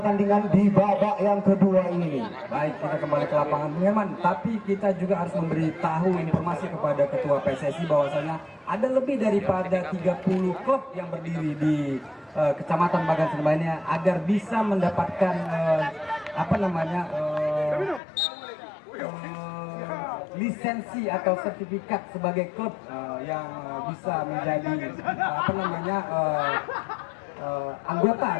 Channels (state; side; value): drops out; right; at 18.0 s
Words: di babak yang kedua ini. Baik, kita kembali ke lapangan Bung Herman, tapi kita juga harus memberitahu informasi kepada ketua PSSI bahwasanya ada lebih daripada 30 klub yang berdiri di Kecamatan Bagan Sinamba ini agar bisa mendapatkan lisensi atau sertifikat sebagai klub yang bisa menjadi anggota